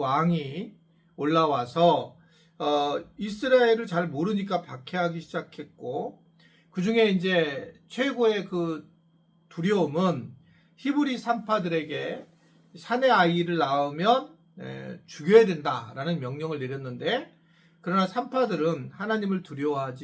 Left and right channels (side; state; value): both; identical; correlation 1.00